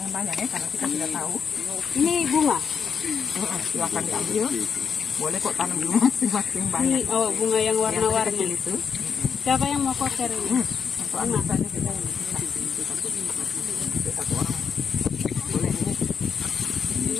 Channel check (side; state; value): right; quieter; 6.5 dB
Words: banyak ya, karena kita tidak tahu. Ini bunga. Silakan diambil. Boleh kok tanam di rumah masing-masing Ini banyak. bunga yang Yang warna-warni. kecil itu. Siapa yang mau koker ini? Untuk ambil saja kita itu satu orang. Boleh ini. Ini